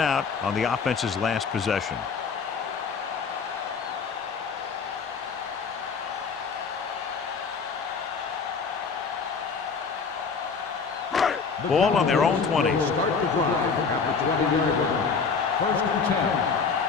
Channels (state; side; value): quieter; right; 5.4 dB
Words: on the offense's last possession. Ball on their own 20. Start the drive at the 20-yard line. 1st and 10.